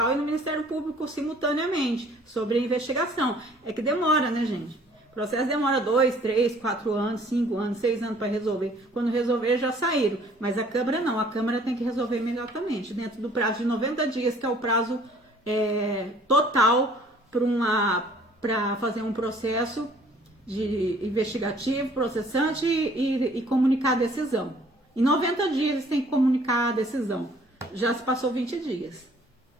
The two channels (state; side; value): normal; both; correlation 0.57